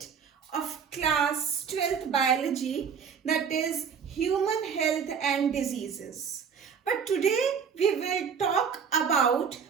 of class 12th biology, that is human health and diseases. But today we will talk about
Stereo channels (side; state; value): left; quieter; 6.8 dB